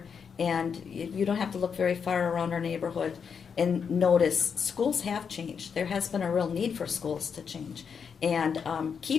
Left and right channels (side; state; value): right; quieter; 6.5 dB